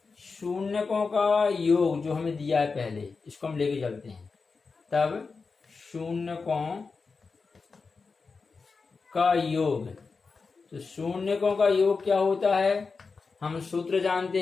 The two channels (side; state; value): right; quieter; 4.6 dB